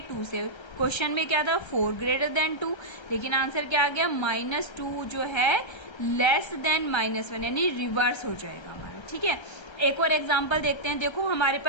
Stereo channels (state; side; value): late; right; 1.3 ms